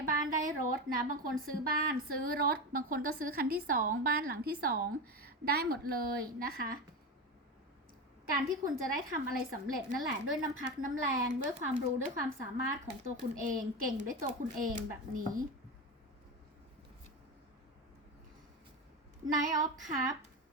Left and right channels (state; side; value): normal; both; correlation 0.19